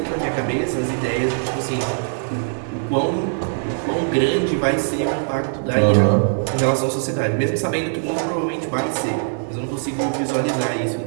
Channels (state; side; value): silent; left; 65 dB below the other